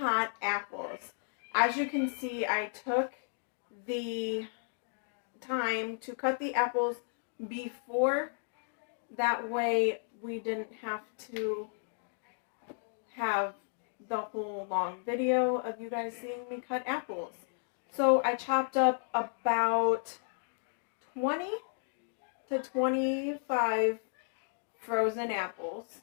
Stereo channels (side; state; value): right; silent; digital silence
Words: apples. As you can see, I took the time to cut the apples before. That way we didn't have to have the whole long video of you guys seeing me cut apples. So I chopped up about 20 to 25 frozen apples.